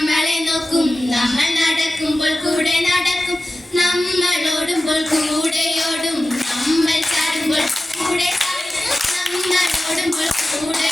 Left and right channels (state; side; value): normal; both; correlation 0.95